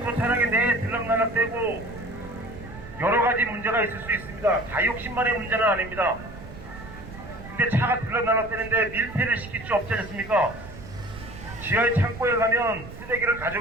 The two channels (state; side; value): noise; right; rumble, 14 dB below the sound